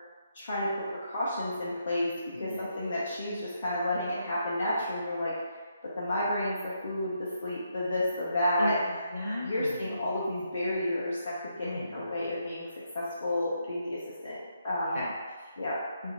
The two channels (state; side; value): inverted; both; correlation -0.79